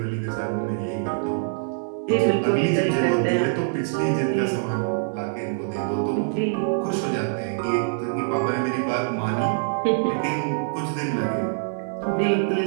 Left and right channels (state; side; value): silent; left; digital silence